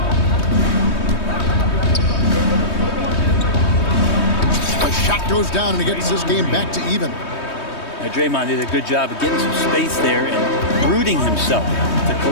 A shot goes down and it gets this game back to even. Now, Draymond did a good job of getting some space there and rooting himself to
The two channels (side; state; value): right; late; 3.2 ms